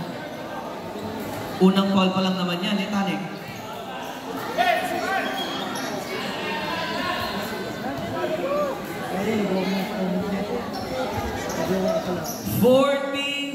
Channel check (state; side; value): identical; both; correlation 1.00